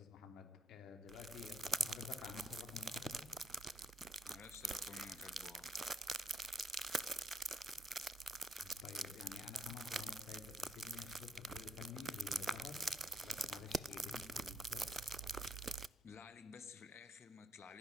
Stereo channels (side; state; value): both; normal; correlation 0.75